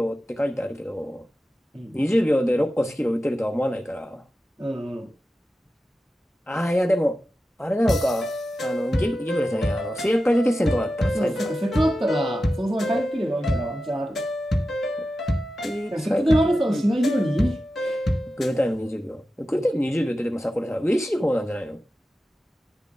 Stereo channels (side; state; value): both; normal; correlation 0.92